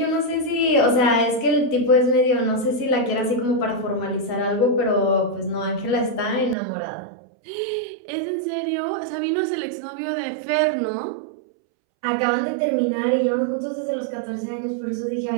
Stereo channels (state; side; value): drops out; left; at 6.6 s